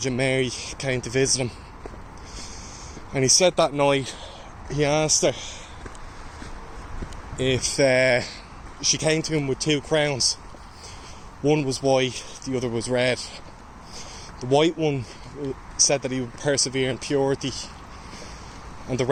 Mary, came to visit him. And he said that night, he asked her if she came to him with two crowns. One was white, the other was red. The white one said that he would persevere in purity, and the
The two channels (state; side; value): identical; both; correlation 1.00